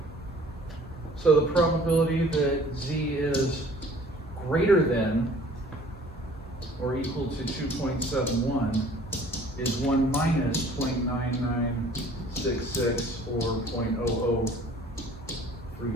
So the probability that z is greater than or equal to 2.71 is 1 minus 0.9966 or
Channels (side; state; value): both; normal; correlation 0.52